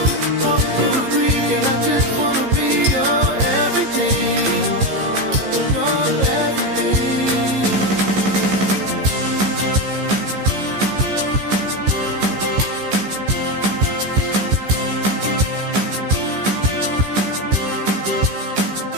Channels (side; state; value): left; late; 15 ms